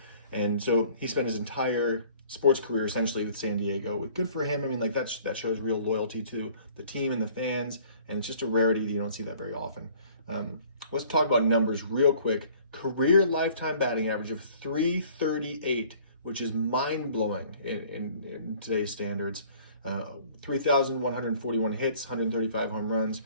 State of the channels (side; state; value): both; inverted; correlation -0.54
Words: And so he spent his entire sports career essentially with San Diego. Good for him. I mean, like that shows real loyalty to the team and the fans, and it's just a rarity that you don't see that very often. Let's talk about numbers real quick. Career lifetime batting average of .338, which is mind-blowing in today's standards. 3,141 hits, 135 home runs,